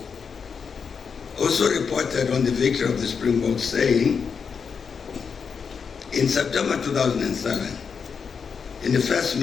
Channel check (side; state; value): right; quieter; 6.1 dB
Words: also reported on the victory of the Springboks, saying, in September 2007, in the first